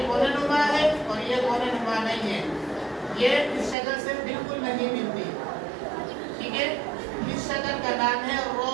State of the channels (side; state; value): left; drops out; at 3.8 s